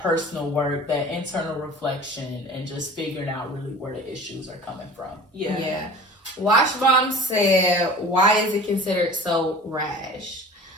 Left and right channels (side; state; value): both; normal; correlation 0.41